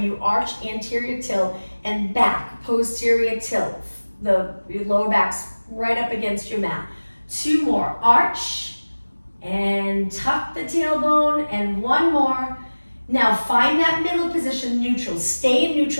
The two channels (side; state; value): both; inverted; correlation -1.00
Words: you arch anterior tilt, and back, posterior tilt. Your lower back's right up against your mat. 2 more. Arch and tuck the tailbone, and 1 more. Now find that middle position, neutral. Stay in